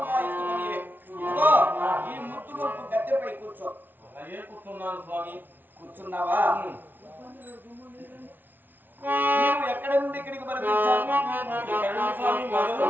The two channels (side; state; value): left; late; 0.089 ms